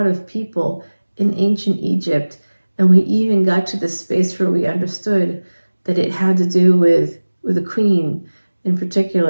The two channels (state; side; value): inverted; both; correlation -1.00